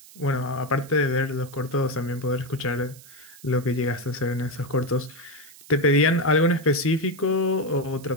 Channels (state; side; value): noise; right; hiss, 21 dB below the sound